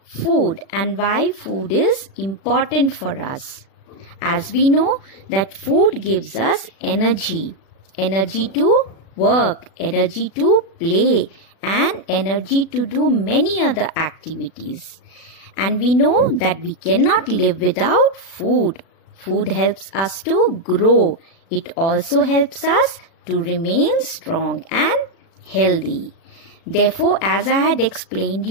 food and why food is important for us. As we know that food gives us energy to work, energy to play, and energy to do many other activities. And we know that we cannot live without food. Food helps us to grow. It also helps us to remain strong and healthy. Therefore, as I had explained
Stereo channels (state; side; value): late; right; 36 ms